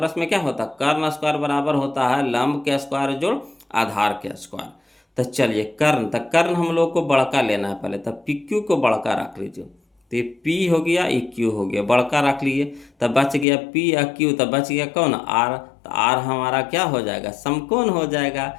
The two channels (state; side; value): drops out; right; at 13.5 s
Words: में क्या होता, कर्ण स्क्वायर बराबर होता है लंब के स्क्वायर जोड़ आधार के स्क्वायर। तो चलिए कर्ण, तो कर्ण हम लोग को बड़का लेना है पहले, तब पी क्यू को बड़का रख लीजिए, तो ये पी हो गया, ये क्यू हो गया, बड़का रख लिए, तब बच गया पी या क्यू, तब बच गया कौन, आर। तो आर हमारा क्या हो जाएगा, समकोण हो जाएगा।